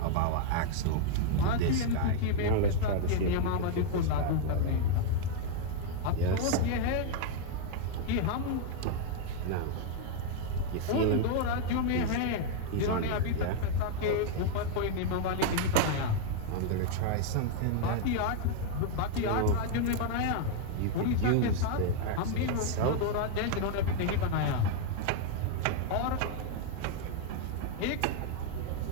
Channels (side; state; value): both; different; correlation 0.00